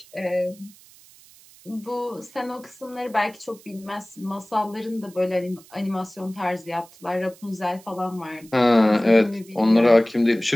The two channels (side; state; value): right; noise; hiss, 24 dB below the sound